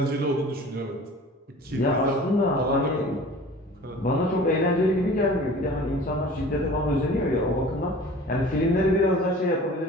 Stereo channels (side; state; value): both; normal; correlation 0.43